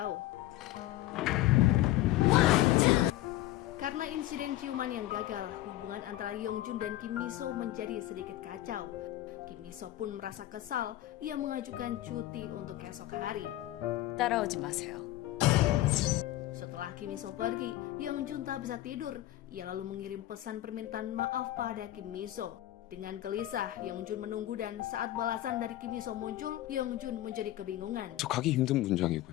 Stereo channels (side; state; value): right; quieter; 15.1 dB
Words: Karena insiden ciuman yang gagal, hubungan antara Yeongjun dan Kim Miso menjadi sedikit kacau. Kim Miso pun merasa kesal, ia mengajukan cuti untuk esok hari. 따라오지 마세요. Setelah Kim Miso pergi, Yeongjun tak bisa tidur. Ia lalu mengirim pesan permintaan maaf pada Kim Miso. Dengan gelisah, Yeongjun menunggu dan saat balasan dari Kim Miso muncul, Yeongjun menjadi kebingungan. 저 가기 힘든